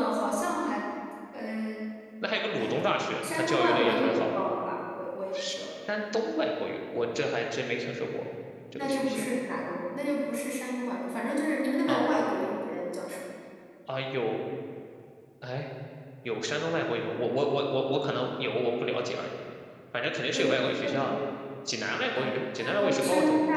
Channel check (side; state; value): both; identical; correlation 1.00